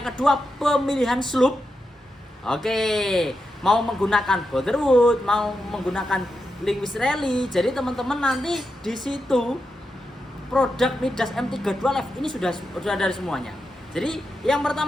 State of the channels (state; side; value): normal; both; correlation 0.87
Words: kedua, pemilihan slope. Oke, mau menggunakan Boulderwood, mau menggunakan Lewis Rally. Jadi teman-teman nanti di situ produk Midas M32 Live ini sudah dari semuanya. Jadi yang